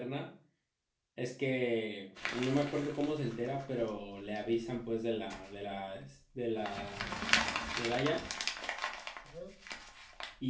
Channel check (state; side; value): identical; both; correlation 1.00